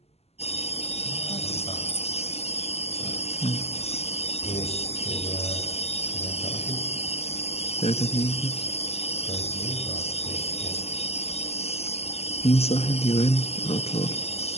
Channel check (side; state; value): right; late; 0.30 ms